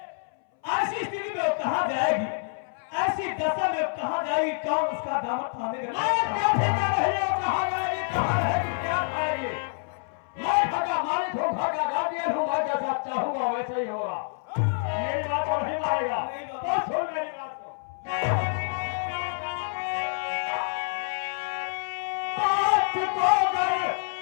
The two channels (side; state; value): right; silent; 60 dB below the other